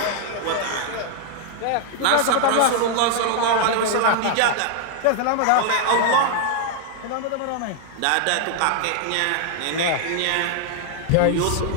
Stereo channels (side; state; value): both; different; correlation 0.00